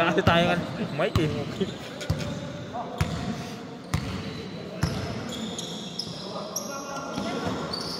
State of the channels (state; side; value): identical; both; correlation 1.00